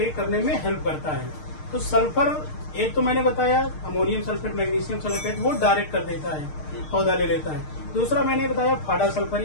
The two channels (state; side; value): late; right; 6.5 ms